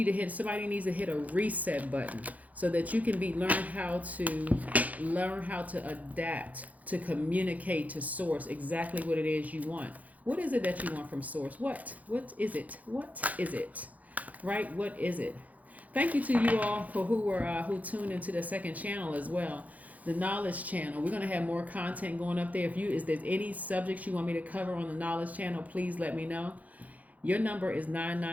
needs to hit a reset button so that you can learn how to adapt, to communicate to source exactly what it is you want. What is it that you want from source? What is it? What is it? Right? What is it? Thank you to you all for who tuned into the second channel as well, the knowledge channel. We're going to have more content going up there. If there's any subjects you want me to cover on the knowledge channel, please let me know. Your number is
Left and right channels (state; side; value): late; left; 0.075 ms